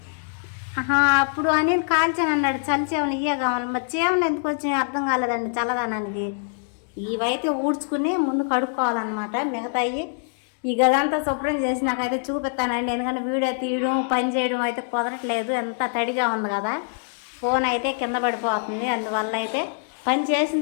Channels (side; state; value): right; silent; digital silence